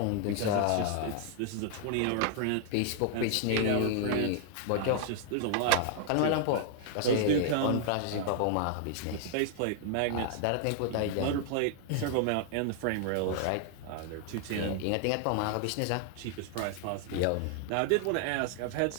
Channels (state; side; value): different; both; correlation 0.00